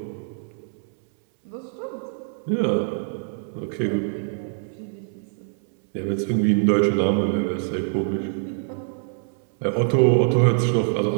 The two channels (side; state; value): left; silent; 62 dB below the other